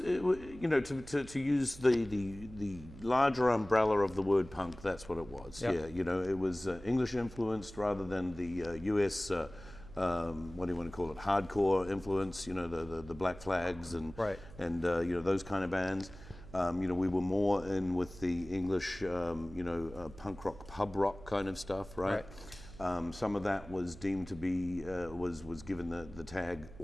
use the larger umbrella of the word punk, that's what it was. Yeah. It was English influenced rather than the US. What do you want to call it? Hardcore influence. The Black Flags and right. and those kind of bands. We were more in with the English, punk rock, pub rock kind of stuff, right? Some of that was deemed to be was given the tag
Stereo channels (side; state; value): right; noise; hum, 17 dB below the sound